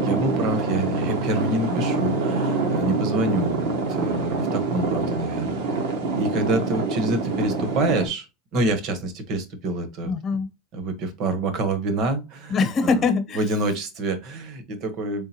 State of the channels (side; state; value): both; normal; correlation 0.24